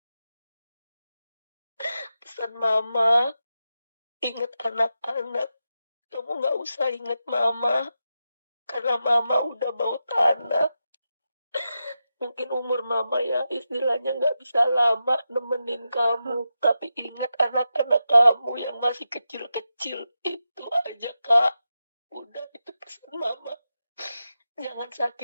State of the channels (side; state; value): both; inverted; correlation -0.89